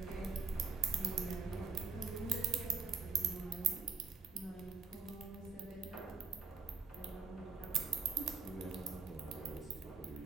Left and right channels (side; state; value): left; quieter; 5.1 dB